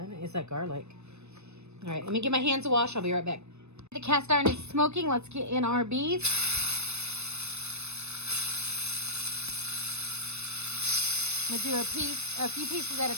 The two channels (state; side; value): late; left; 0.81 ms